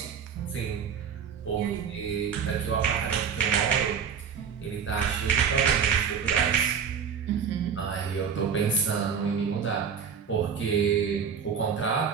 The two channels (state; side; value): quieter; left; 7.0 dB